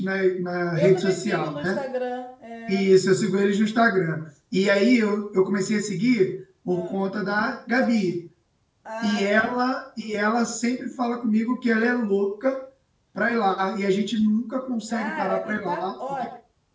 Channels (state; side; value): identical; both; correlation 1.00